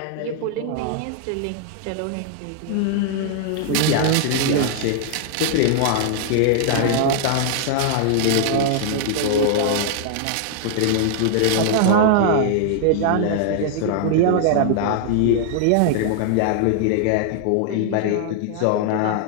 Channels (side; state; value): both; different; correlation -0.01